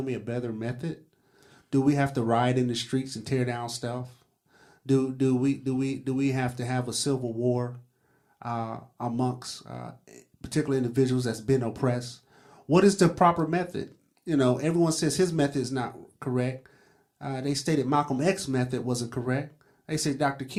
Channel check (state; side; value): identical; both; correlation 1.00